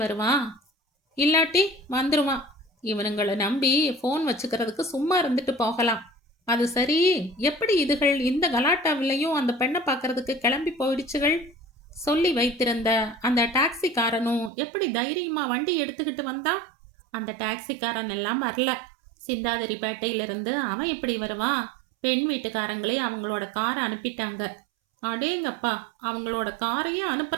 வருவான்? இல்லாட்டி வந்துருவான். இவனுங்களை நம்பி ஃபோன் வச்சுக்கிறதுக்கு சும்மா இருந்துட்டு போகலாம். அது சரி, எப்படி இதுகள் இந்த கலாட்டாவிலையும் அந்த பெண்ணை பார்க்கறதுக்கு கிளம்பி போயிடுச்சுகள்? சொல்லி வைத்திருந்த அந்த டாக்ஸிக்காரனும் எப்படி தைரியமா வண்டி எடுத்துக்கிட்டு வந்தான்? அந்த டாக்ஸிக்காரன் எல்லாம் வரல. சிந்தாதிரிப்பேட்டையிலிருந்து அவன் எப்படி வருவான்? பெண் வீட்டுக்காரங்களே அவங்களோட காரை அனுப்பிட்டாங்க. அடேங்கப்பா, அவங்களோட காரையே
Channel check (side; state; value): left; drops out; at 14.5 s